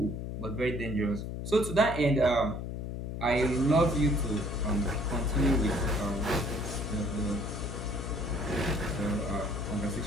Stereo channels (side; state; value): left; noise; hum, 5 dB below the sound